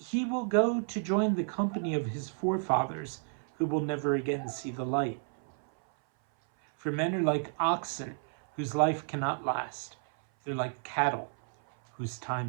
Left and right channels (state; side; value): silent; left; 57 dB below the other